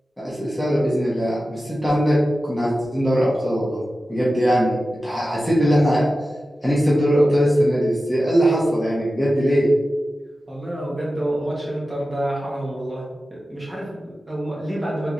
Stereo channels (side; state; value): both; normal; correlation 0.94